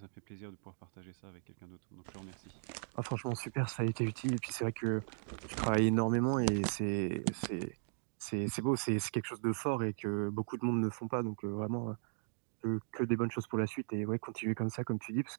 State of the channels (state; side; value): silent; left; digital silence